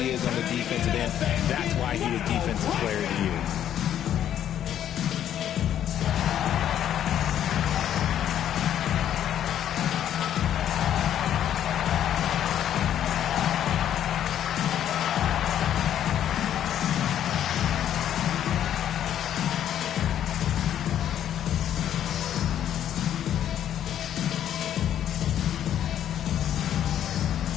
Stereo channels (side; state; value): right; quieter; 10.5 dB